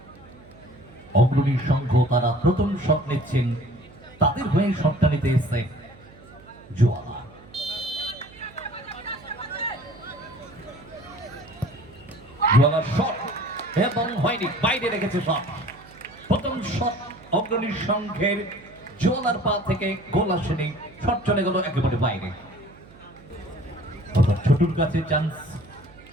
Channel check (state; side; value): noise; right; hum, 23 dB below the sound